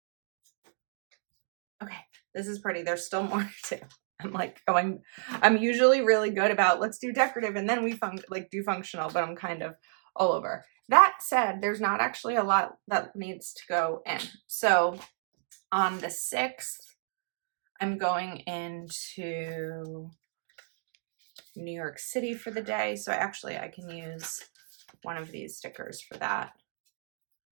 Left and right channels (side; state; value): left; silent; digital silence